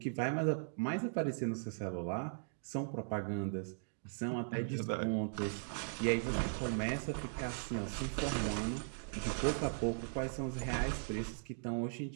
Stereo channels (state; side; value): silent; left; digital silence